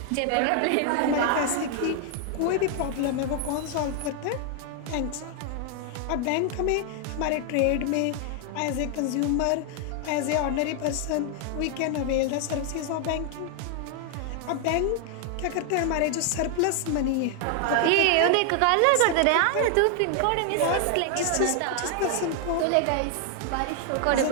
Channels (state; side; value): different; both; correlation 0.00